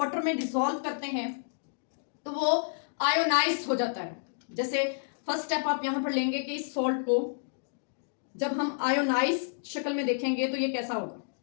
में डिसॉल्व करते हैं तो वो आयोनाइज हो जाता है। जैसे फर्स्ट स्टेप आप यहां पर लेंगे कि इस सॉल्ट को जब हम आयोनाइज शक्ल में देखेंगे तो ये कैसा होगा,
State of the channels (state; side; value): silent; right; digital silence